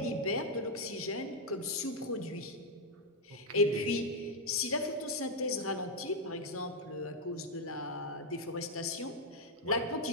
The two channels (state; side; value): normal; both; correlation -0.01